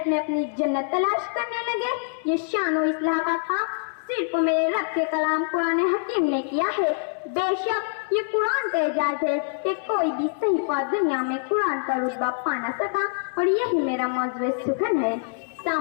میں اپنی جنت تلاش کرنے لگے؟ یہ شان و اصلاح کا کام صرف میرے رب کے کلام قرآن حکیم نے کیا ہے۔ بے شک یہ قرآن کا اعجاز ہے کہ کوئی بھی صحیفہ دنیا میں قرآن کا رتبہ پا نہ سکا، اور یہی میرا موضوع سخن ہے۔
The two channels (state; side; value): silent; right; 60 dB below the other